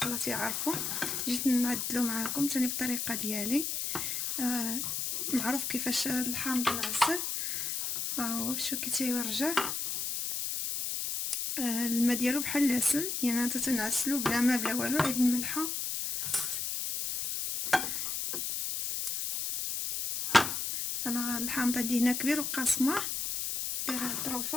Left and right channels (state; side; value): noise; left; hiss, 2 dB below the sound